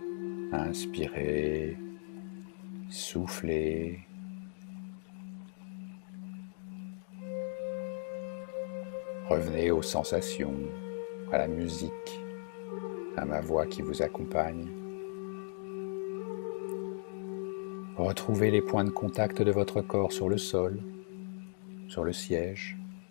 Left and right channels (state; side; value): silent; right; digital silence